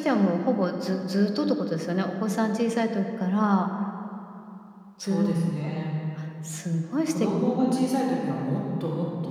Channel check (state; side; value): identical; both; correlation 1.00